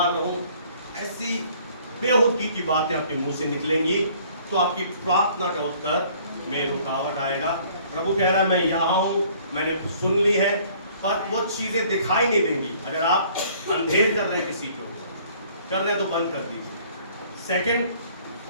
रहूं, ऐसी बेहुदगी की बातें आपके मुंह से निकलेंगी तो आपकी प्रार्थना का उत्तर में रुकावट आएगा। प्रभु कह रहा है मैं यहाँ हूं, मैंने सुन ली है, पर वो चीजें दिखाई नहीं देंगी। अगर आप अंधेर कर रहे हैं किसी को, कर रहे हैं तो बंद कर दीजिए। सेकंड,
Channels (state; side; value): inverted; both; correlation -0.57